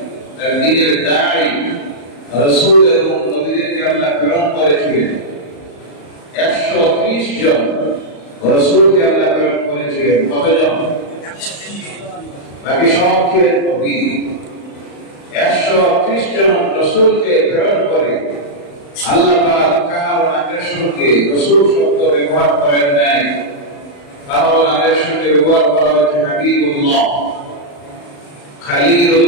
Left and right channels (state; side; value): late; right; 35 ms